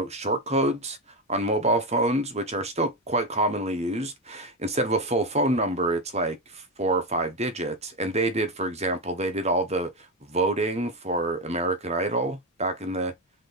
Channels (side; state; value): both; normal; correlation 0.12